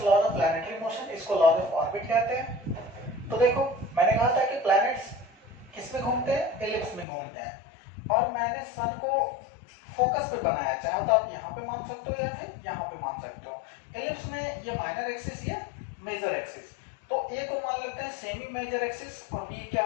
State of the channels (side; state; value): right; drops out; at 7.1 s